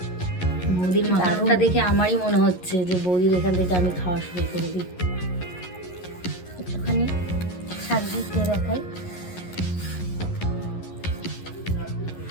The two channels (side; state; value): right; late; 11 ms